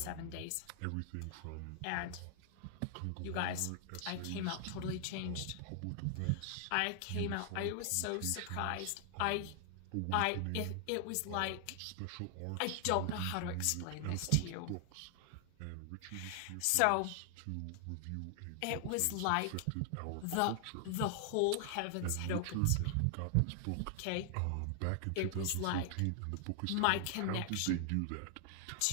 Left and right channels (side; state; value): both; different; correlation 0.00